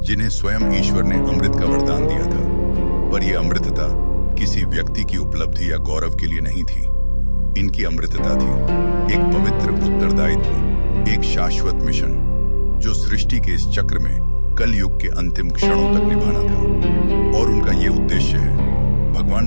जिन्हें स्वयं ईश्वर ने अमृत का वरदान दिया था। पर यह अमृतता किसी व्यक्ति की उपलब्धि या गौरव के लिए नहीं थी। इनकी अमृतता थी एक पवित्र उत्तरदायित्व, एक शाश्वत मिशन जो सृष्टि के इस चक्र में कलयुग के अंतिम क्षणों तक निभाना था। और उनका ये उद्देश्य है भगवान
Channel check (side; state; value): both; inverted; correlation -1.00